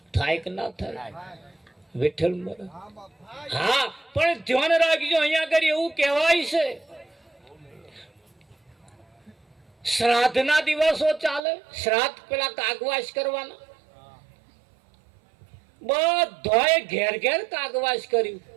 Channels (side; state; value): left; drops out; at 11.4 s